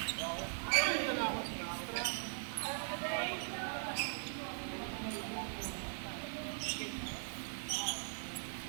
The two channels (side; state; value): left; silent; 51 dB below the other